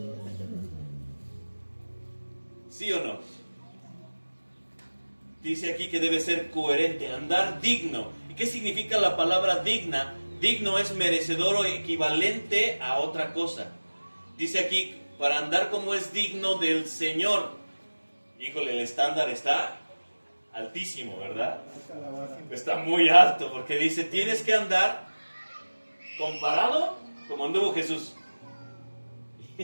¿Sí o no? Dice aquí que debe ser coherente, andar digno. ¿Y qué significa la palabra digna? Digno es merecedor o equivalente a otra cosa. Dice aquí, para andar como es digno del Señor. híjole, el estándar está altísimo, ¿verdad? Hasta la base. Está muy alto, porque dice, tienes que andar comparado como anduvo Jesús.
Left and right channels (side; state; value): both; inverted; correlation -1.00